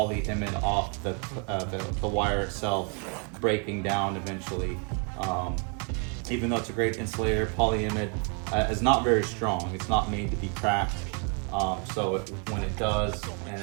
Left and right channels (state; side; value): quieter; left; 37.5 dB